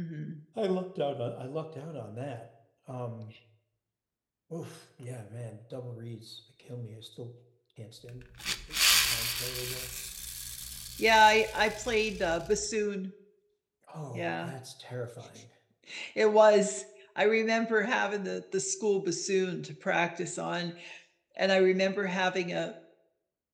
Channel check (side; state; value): both; identical; correlation 1.00